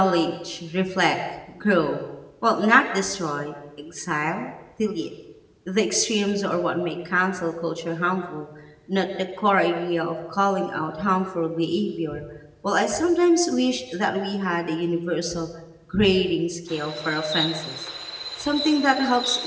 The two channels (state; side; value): identical; both; correlation 1.00